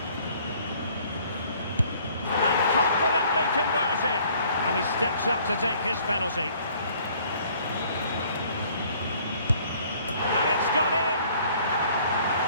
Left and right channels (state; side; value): inverted; both; correlation -0.58